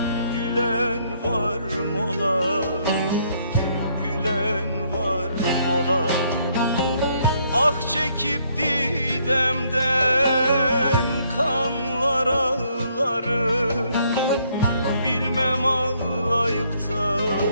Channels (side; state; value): both; inverted; correlation -0.69